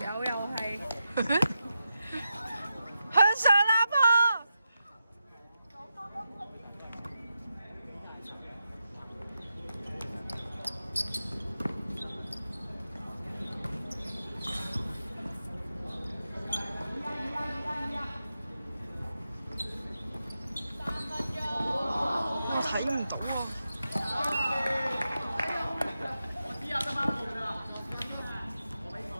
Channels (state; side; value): inverted; both; correlation -0.89